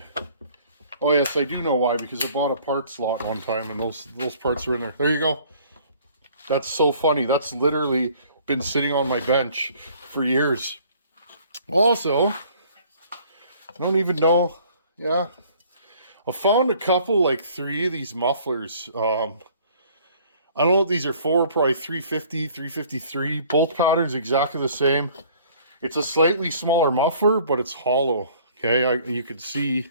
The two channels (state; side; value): inverted; both; correlation -0.56